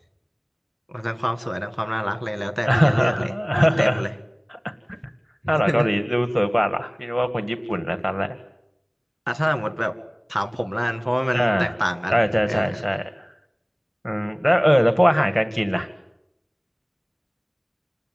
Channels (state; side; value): identical; both; correlation 1.00